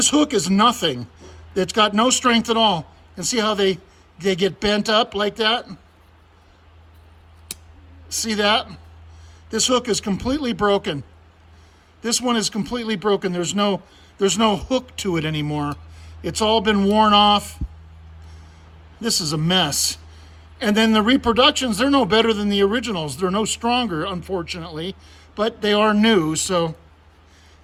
hook is nothing. It's got no strength at all. And see how they get bent up like that? See that? This hook is completely broken. This one is completely broken. There's no hook to it anymore. It's all been worn off. This is a mess. And then the reproductions, they're no better than the originals. They're no stronger, unfortunately, but they are new, so.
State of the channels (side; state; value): both; identical; correlation 1.00